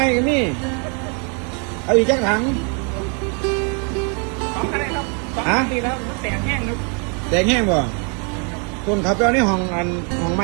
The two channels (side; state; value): left; quieter; 37.6 dB